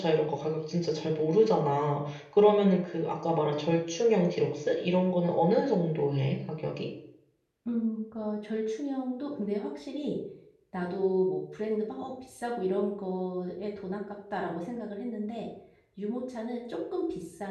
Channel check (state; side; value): identical; both; correlation 1.00